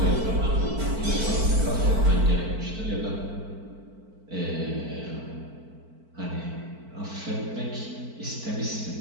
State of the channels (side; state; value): left; late; 4.5 ms